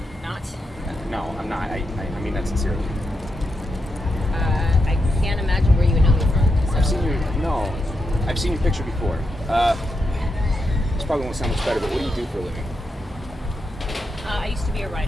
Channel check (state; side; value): normal; both; correlation 0.84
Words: Not. No, I'm not. I mean that sincerely. I can't imagine where you would know me from. So. I've seen your picture before. This probably won't sound much better, but what do you do for a living? I used to be a